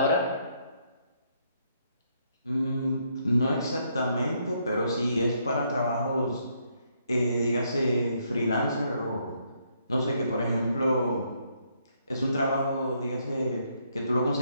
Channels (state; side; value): inverted; both; correlation -0.73